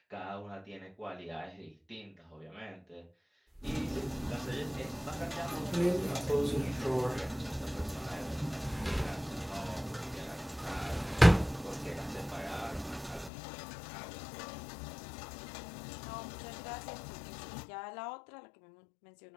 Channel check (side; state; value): right; drops out; at 13.3 s